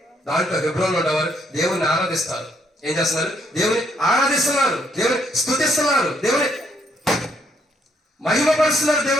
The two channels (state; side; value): normal; both; correlation 0.71